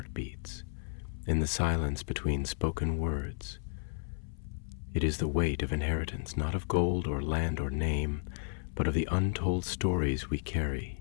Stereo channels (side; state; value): right; silent; 56 dB below the other